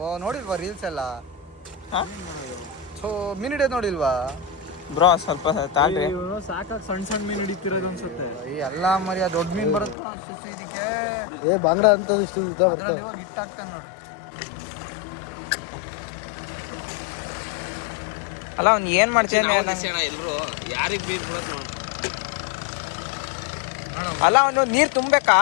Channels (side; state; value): right; drops out; at 10.0 s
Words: ನೋಡಿಲ್ವಾ ರೀಲ್ಸ್ ಎಲ್ಲ? ಮೀನ್ ಹಿಡಿಯೋದು ನೋಡಿಲ್ವಾ ಬ್ರೋ? ಸ್ವಲ್ಪ ತಾಳ್ರಿ. ಸಾಕಾಗಿ ಸಣ್ಣ ಮೀನು ಹಿಡಿತಿರೋದು ಅನ್ಸುತ್ತೆ. ಎಲ್ಲ ಮರಿ ದೊಡ್ಡ ಮೀನ್ ಬರುತ್ತೆ ಅಷ್ಟು ಇದಕ್ಕೆ. ಬಾಂಗ್ಡಾ ಅಂತ ಅದ್ರಲ್ಲಿ ಇವಾಗ ಹಿಟ್ಟಾಗ್ತಾನೆ ನೋಡು. ಅಲ್ಲ ಅವ್ನು ಏನ್ ಮಾಡ್ತೇನೆ? ಎಲ್ರು ಯಾರಿಗ್ ಬೀರ್ ಬಿಡೋದು? ಅಲ್ಲ ಅವನು ನೀರ್ ತುಂಬೇಕಾ?